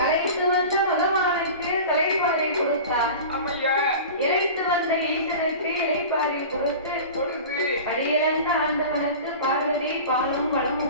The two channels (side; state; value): both; inverted; correlation -0.35